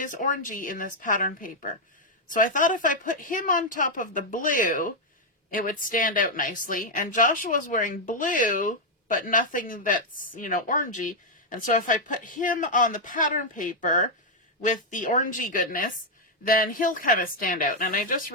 orangey in this pattern paper. So I thought if I put him on top of the blue, it would stand out nicely. And Joshua's wearing blue, but nothing that's, orangey. And so if I put him on the pattern paper with the orangey goodness, then he'll kind of stand out. And I just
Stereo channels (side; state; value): both; normal; correlation -0.01